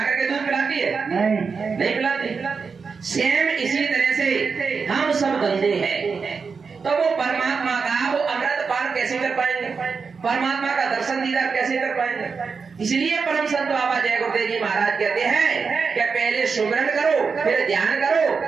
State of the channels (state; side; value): quieter; left; 5.2 dB